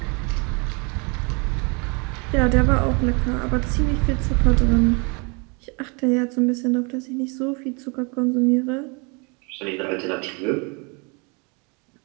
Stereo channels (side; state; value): left; quieter; 31.7 dB